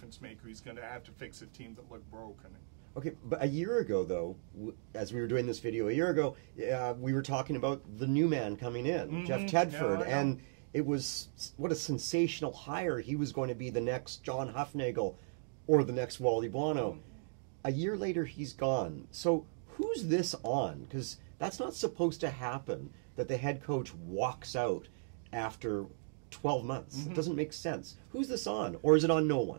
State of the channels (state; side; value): silent; left; digital silence